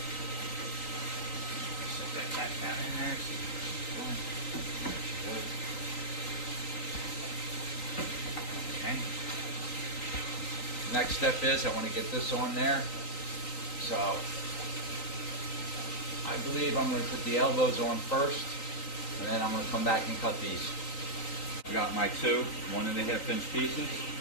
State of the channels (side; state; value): right; late; 3.9 ms